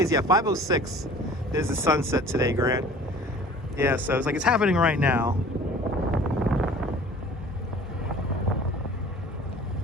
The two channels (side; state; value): both; normal; correlation 0.47